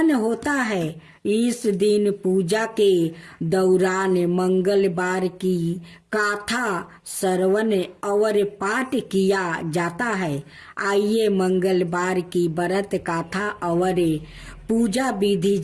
होता है। इस दिन पूजा के दौरान मंगलवार की कथा श्रवण और पाठ किया जाता है। आइए मंगलवार की व्रत कथा और पूजा विधि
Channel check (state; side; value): identical; both; correlation 1.00